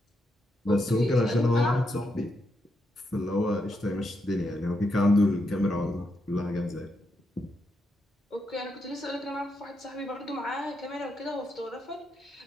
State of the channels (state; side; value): normal; both; correlation 0.82